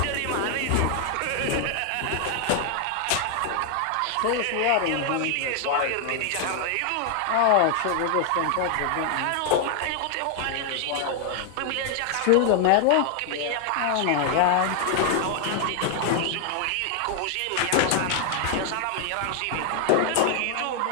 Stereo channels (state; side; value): different; both; correlation 0.00